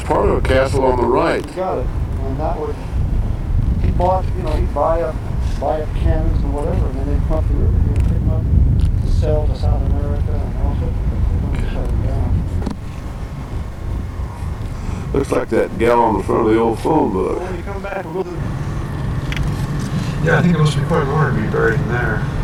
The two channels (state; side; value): identical; both; correlation 1.00